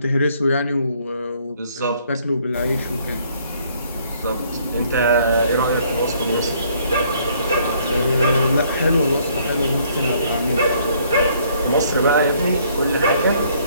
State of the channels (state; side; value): inverted; both; correlation -0.64